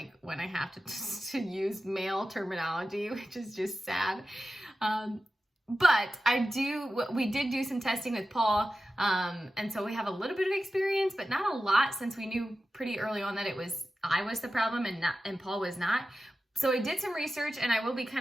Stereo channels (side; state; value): both; normal; correlation 0.93